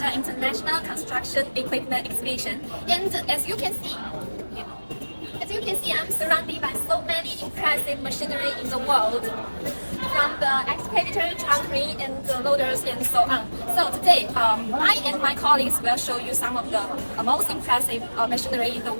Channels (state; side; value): inverted; both; correlation -1.00